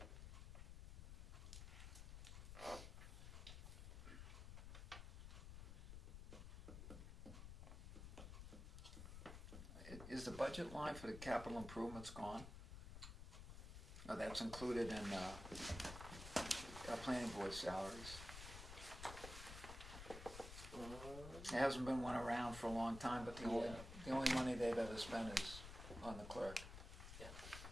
Is the budget line for the capital improvements gone? Or that's included in our planning board salaries? There hasn't been one around for a long time, but the only money they've ever spent is on the clerk. Yeah.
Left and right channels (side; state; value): left; noise; rumble, 9 dB below the sound